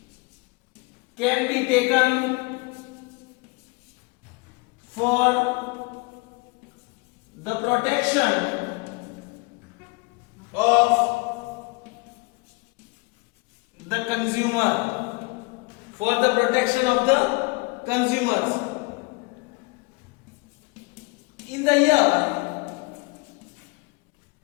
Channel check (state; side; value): quieter; right; 27.3 dB